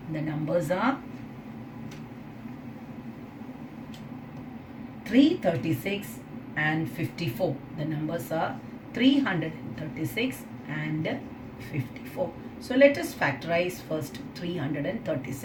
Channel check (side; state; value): both; identical; correlation 1.00